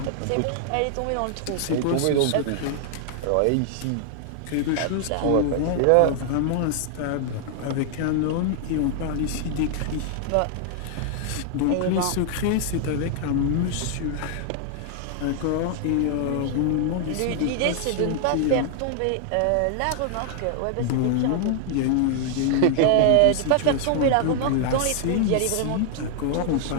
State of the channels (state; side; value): different; both; correlation 0.00